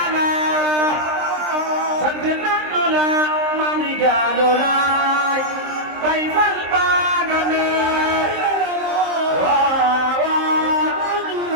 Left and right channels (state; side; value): late; left; 23 ms